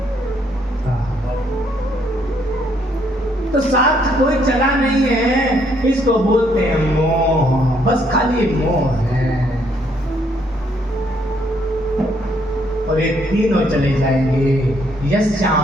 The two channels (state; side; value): normal; both; correlation 0.70